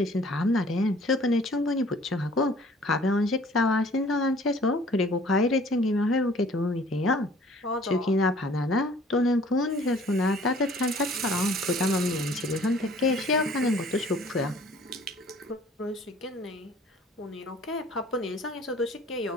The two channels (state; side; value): normal; both; correlation 0.53